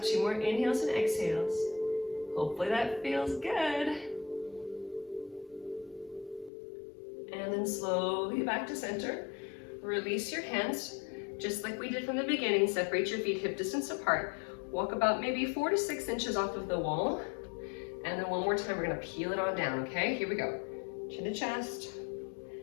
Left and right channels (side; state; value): right; drops out; at 6.5 s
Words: 2 more inhales and exhales. Hopefully that feels good. And then slowly back to center. Release your hands, just like we did from the beginning. Separate your feet hip distance apart. Walk about maybe 4 to 6 inches off of the wall. And then one more time, we're gonna peel it on down, okay? Here we go. Chin to chest.